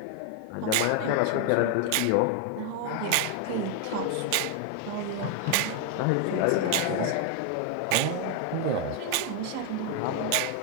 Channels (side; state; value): both; different; correlation 0.01